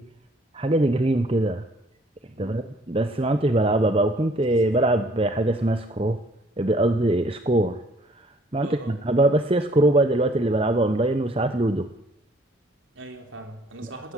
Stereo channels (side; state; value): both; normal; correlation 0.60